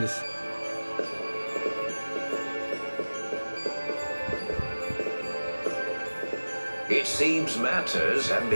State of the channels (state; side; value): inverted; both; correlation -1.00